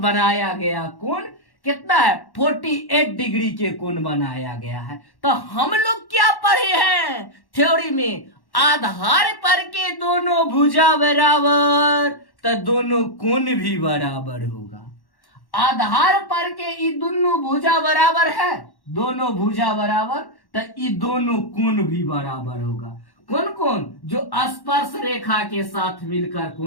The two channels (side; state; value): right; late; 1.1 ms